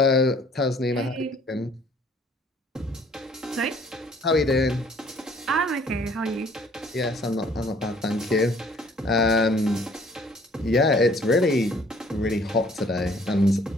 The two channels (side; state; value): both; normal; correlation 0.57